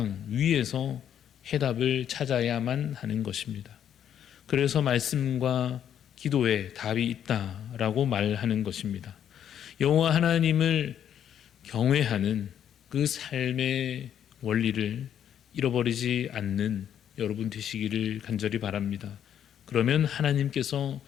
위에서 해답을 찾아야만 하는 것입니다. 그래서 말씀과 기도에 답이 있다라고 말하는 것입니다. 여호와 하나님을 경외하는 그 삶의 원리를 잃어버리지 않는 여러분 되시기를 간절히 바랍니다. 그러면 하나님께서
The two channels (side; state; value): right; quieter; 9.5 dB